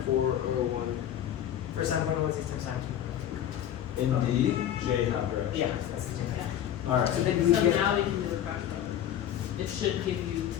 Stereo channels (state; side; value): quieter; right; 10.8 dB